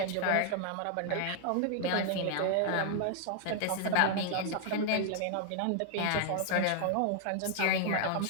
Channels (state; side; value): different; both; correlation 0.00